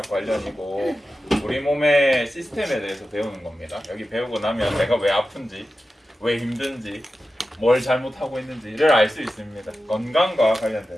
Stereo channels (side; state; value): both; normal; correlation 0.93